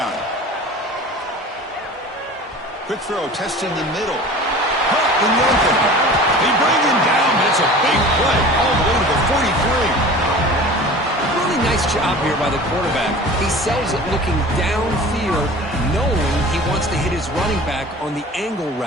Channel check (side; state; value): both; normal; correlation 0.40